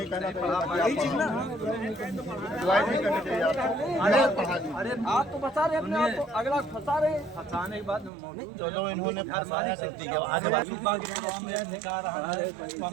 नहीं पढ़ा पाए। अरे आप तो बचा रहे हैं अपने आप को, अगला फंसा रहे हैं। फंसाने के बाद मौजूद इन्होंने घर मालिक से सुबह के प्रोग्राम में निकाह रहा है तो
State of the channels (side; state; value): left; drops out; at 8.1 s